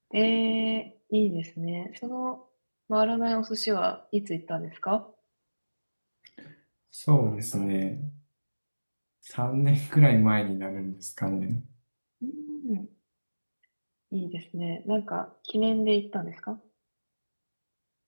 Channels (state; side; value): inverted; both; correlation -1.00